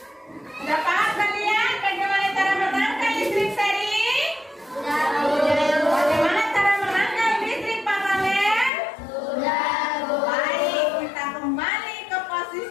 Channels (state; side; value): drops out; right; at 8.7 s